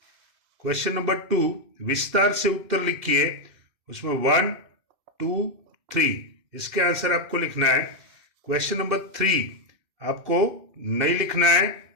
क्वेश्चन नंबर 2, विस्तार से उत्तर लिखिए, उसमें 1, 2, 3 इसके आंसर आपको लिखना है। क्वेश्चन नंबर 3 आपको नहीं लिखना है।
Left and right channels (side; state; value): left; late; 2.6 ms